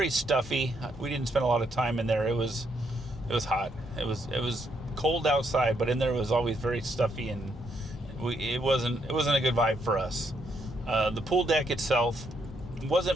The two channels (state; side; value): normal; both; correlation 0.75